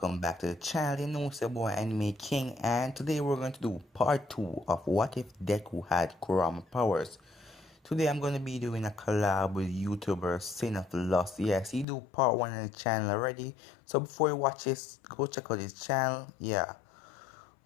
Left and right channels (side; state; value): right; drops out; at 11.9 s